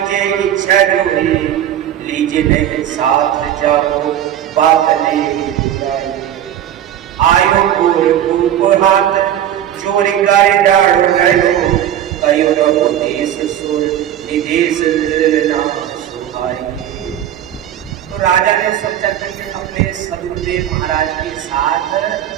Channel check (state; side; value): quieter; left; 11.0 dB